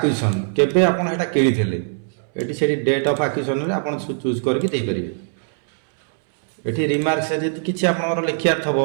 केबे आप किनी ये से डेट ऑफ एक्विजिशन आप चूज करके ये रिमार्क से किसी आप लिखा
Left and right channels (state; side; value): silent; left; 65 dB below the other